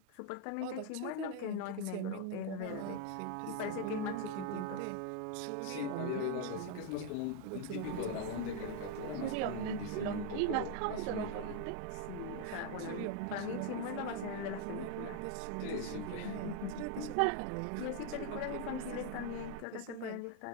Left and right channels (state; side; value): different; both; correlation 0.01